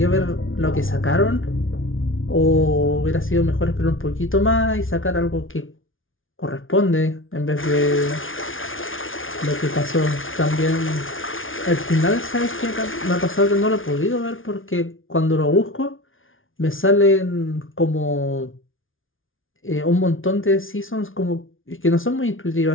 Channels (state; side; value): late; right; 0.58 ms